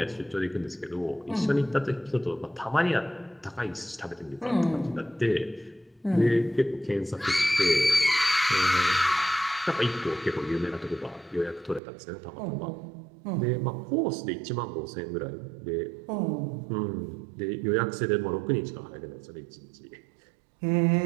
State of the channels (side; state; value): left; drops out; at 11.8 s